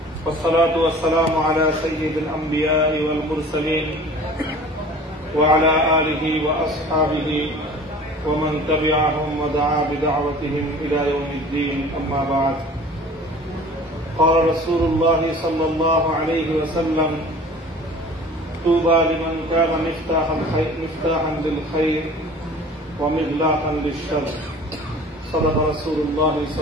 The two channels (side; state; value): both; normal; correlation 0.45